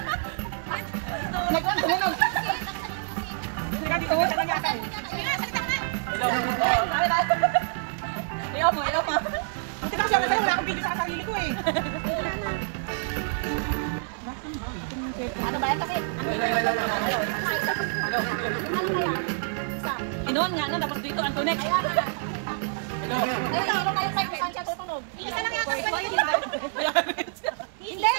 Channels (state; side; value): silent; left; digital silence